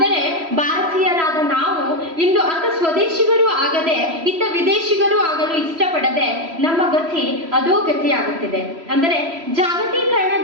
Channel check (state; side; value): late; left; 3.0 ms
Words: ಭಾರತೀಯರಾದ ನಾವು ಇಂದು ಅತ್ತ ಸ್ವದೇಶಿಗರೂ ಆಗದೆ ಇತ್ತ ವಿದೇಶಿಗರೂ ಆಗಲು ಇಷ್ಟಪಡದೆ ನಮ್ಮ ಗತಿ ಅಧೋಗತಿಯಾಗುತ್ತಿದೆ. ಅಂದರೆ